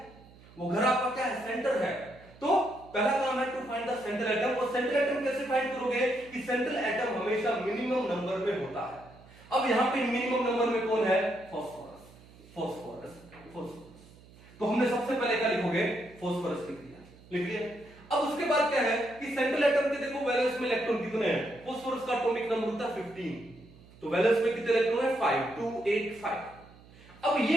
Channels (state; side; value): noise; right; hum, 23 dB below the sound